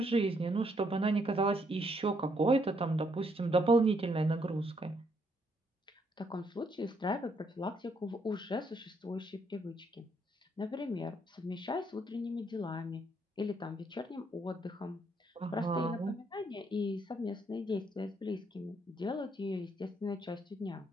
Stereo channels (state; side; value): normal; both; correlation 0.72